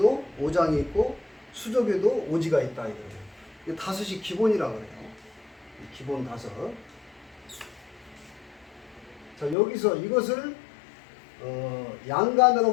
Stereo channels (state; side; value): drops out; right; at 9.6 s